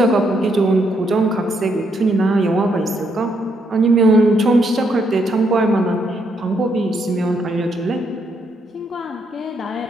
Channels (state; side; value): normal; both; correlation 0.75